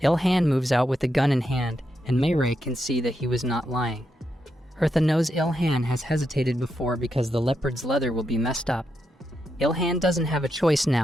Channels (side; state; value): both; normal; correlation 0.84